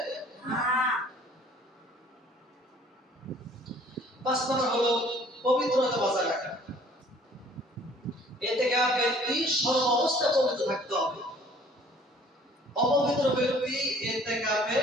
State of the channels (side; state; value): both; normal; correlation 0.54